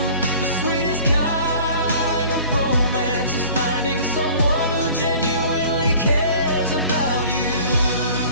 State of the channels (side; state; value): both; inverted; correlation -0.47